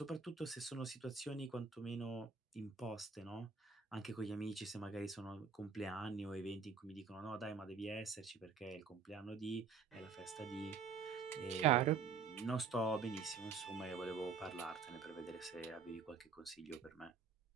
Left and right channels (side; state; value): left; quieter; 5.3 dB